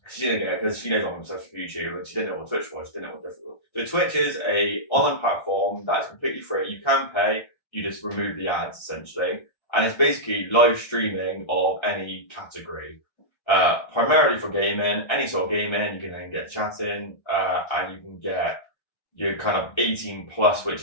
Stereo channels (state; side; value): late; right; 1.3 ms